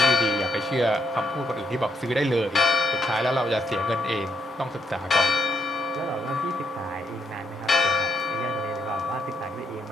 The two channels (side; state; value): both; normal; correlation 0.75